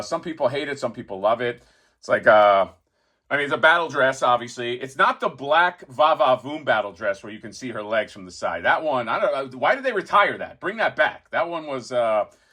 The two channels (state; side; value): identical; both; correlation 1.00